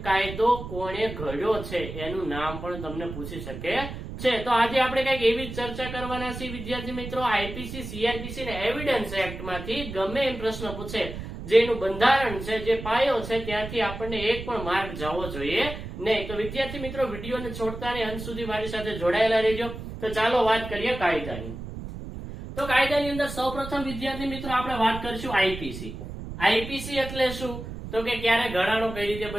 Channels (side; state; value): right; noise; rumble, 9 dB below the sound